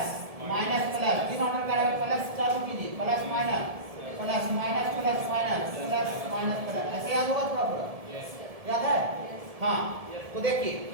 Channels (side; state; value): left; late; 1.7 ms